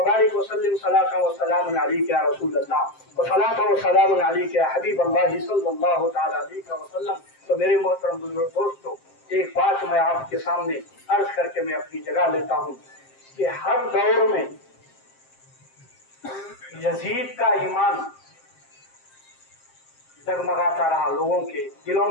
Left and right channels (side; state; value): right; late; 7.6 ms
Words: وسلم صلاۃ وسلام علیک یا رسول اللہ وصلاۃ وسلام علیک یا حبیب اللہ صلی اللہ تعالی علیہ وسلم۔ تو میرے محترم بزرگ دوستو، ایک بات میں آپ کے سامنے عرض کر کے میں اپنی جگہ لیتا ہوں کہ ہر دور میں یزید کا ایمان جگمگاتا رہا، لوگوں کے دلوں